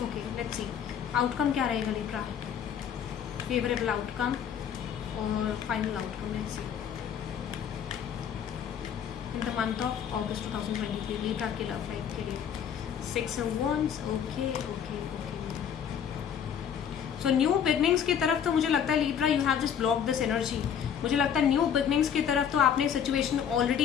ओके लेट्स सी आउटकम क्या रहेगा लीब्रा, फेवरेबल आउटकम और final outcome. Let's see in the month of August 2023 Libra के लव लाइफ के लिए 6 of Wands। Okay. So new beginnings की तरफ तो मुझे लगता है Libra you have just block this energy. मुझे लगता है न्यू बिगनिंग्स की तरफ तो आपने सिचुएशन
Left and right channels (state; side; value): quieter; right; 8.3 dB